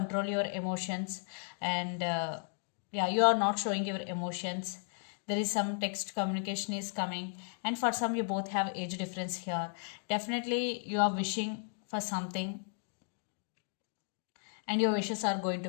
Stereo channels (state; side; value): silent; right; 55 dB below the other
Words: your emotions, and yeah, you are not showing your emotions. There is some text communication is coming, and for some you both have age difference here. Definitely you are wishing for something and your wishes are going to